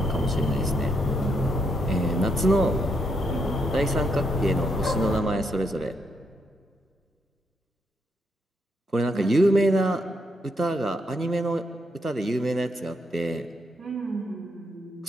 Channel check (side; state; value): both; normal; correlation 0.77